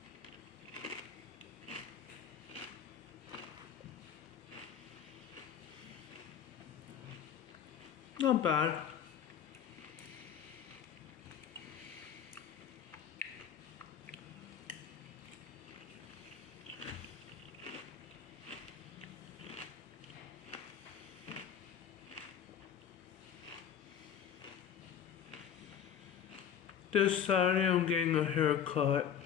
Not bad. This Saturday I'm getting a haircut.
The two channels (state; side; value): quieter; right; 8.6 dB